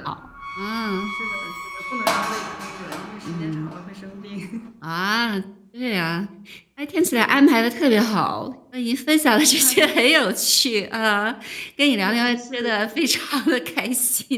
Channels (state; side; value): identical; both; correlation 1.00